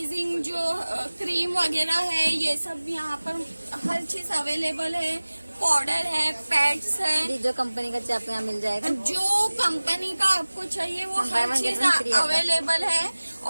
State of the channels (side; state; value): both; inverted; correlation -1.00